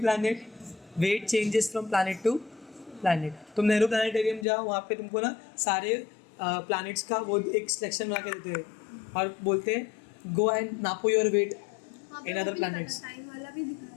weight changes from planet to planet. तुम नेहरू प्लानिटेरियम जाओ, वहाँ पे तुमको ना सारे प्लैनेट्स का वो एक सिलेक्शन बना के देते हैं और बोलते हैं गो एंड नापो your weight in other planets. Time वाला भी दिखा रहा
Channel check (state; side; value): drops out; right; at 4.5 s